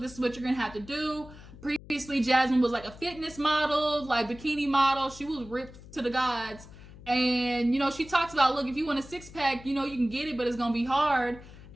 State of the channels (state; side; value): noise; left; hum, 18 dB below the sound